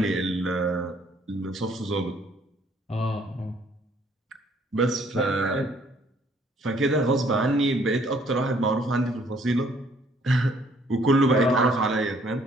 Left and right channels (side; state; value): both; normal; correlation 0.62